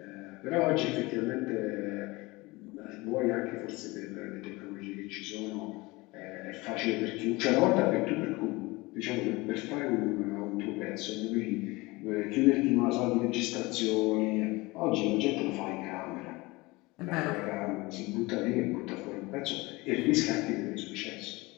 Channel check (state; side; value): quieter; right; 22.7 dB